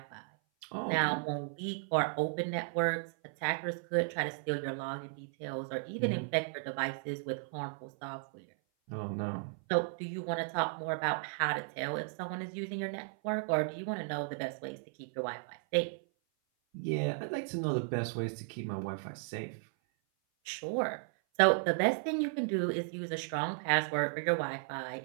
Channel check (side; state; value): left; silent; 54 dB below the other